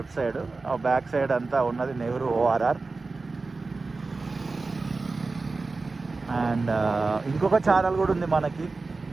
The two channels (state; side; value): quieter; left; 3.8 dB